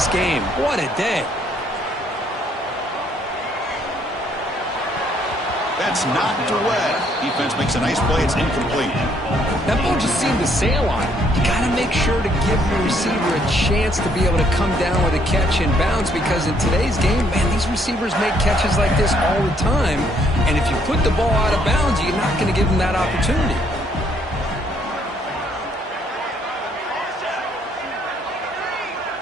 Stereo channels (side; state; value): both; normal; correlation 0.68